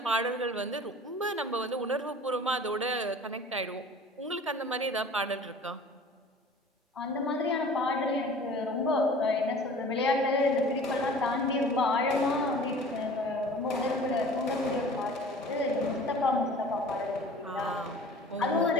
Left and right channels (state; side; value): normal; both; correlation 0.45